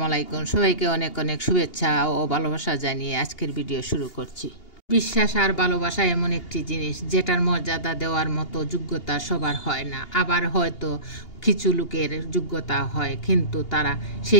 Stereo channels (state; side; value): late; right; 2.8 ms